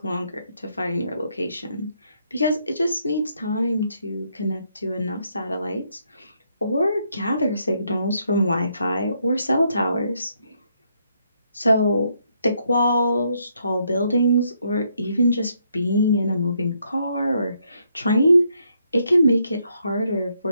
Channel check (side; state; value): both; inverted; correlation -0.75